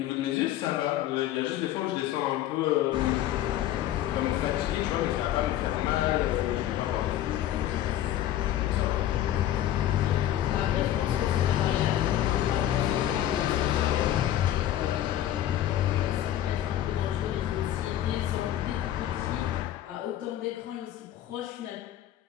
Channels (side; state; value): right; quieter; 12.4 dB